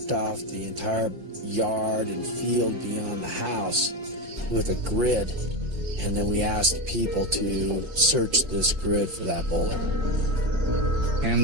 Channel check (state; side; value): late; left; 5.7 ms